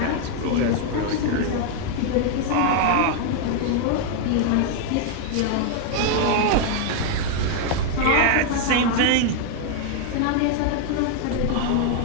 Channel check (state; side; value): different; both; correlation 0.00